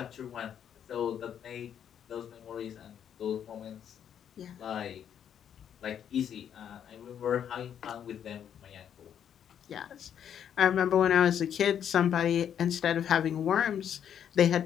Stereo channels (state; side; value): quieter; right; 9.0 dB